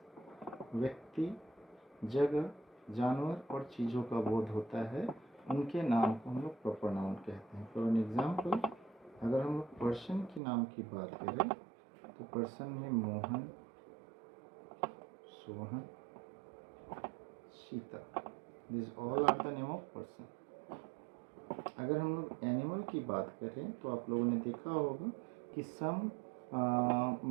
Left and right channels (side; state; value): left; drops out; at 10.4 s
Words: व्यक्ति, जगह, जानवर और चीज़ों का बोध होता है, उनके नाम को हम लोग प्रॉपर नाउन कहते हैं. फॉर एन एग्जाम्पल, अगर हम लोग पर्सन के नाम की बात करें तो पर्सन में Mohan, Sohan, Sita, this all are the name of person. अगर हम लोग एनिमल की बात करें तो आप लोगों ने देखा होगा कि some